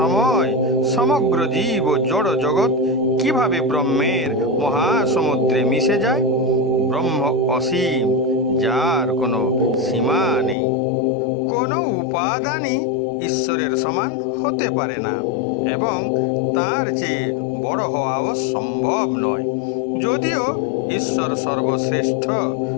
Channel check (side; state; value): right; drops out; at 10.6 s